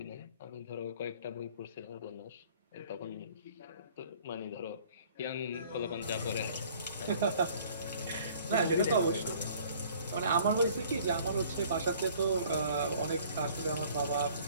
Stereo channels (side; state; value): both; inverted; correlation -0.54